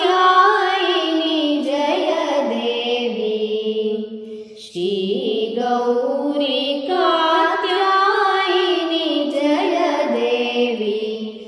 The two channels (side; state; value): both; identical; correlation 1.00